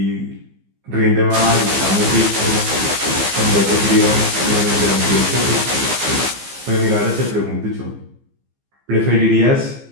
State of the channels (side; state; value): left; late; 15 ms